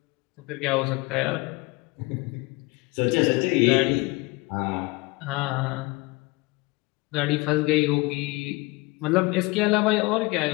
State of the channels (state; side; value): quieter; right; 24.2 dB